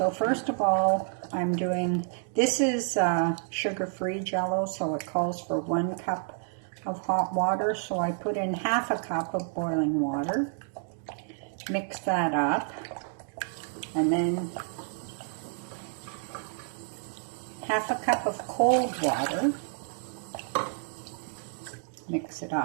first of all, I'm doing, this is sugar-free Jello, so it calls for 1 cup of hot water. So I put in half a cup of boiling water, mix that up, and then half a cup of cold water, mix it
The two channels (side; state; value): left; silent; 56 dB below the other